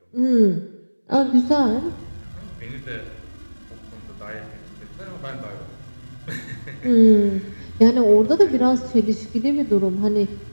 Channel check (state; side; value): inverted; both; correlation -1.00